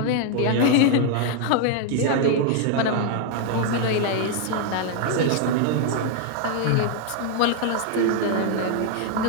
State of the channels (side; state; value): both; different; correlation 0.00